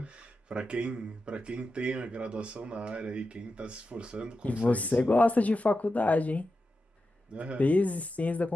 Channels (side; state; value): both; normal; correlation 0.90